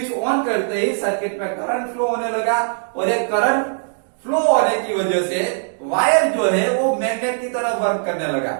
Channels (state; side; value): silent; left; digital silence